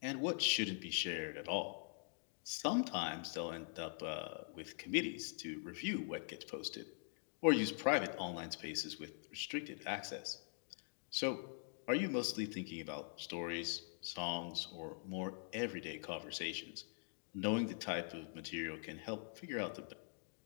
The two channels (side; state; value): right; silent; digital silence